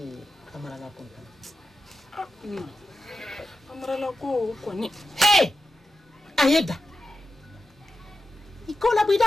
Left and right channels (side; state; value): both; normal; correlation 0.90